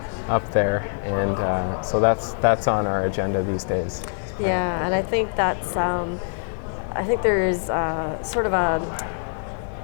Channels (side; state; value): right; silent; digital silence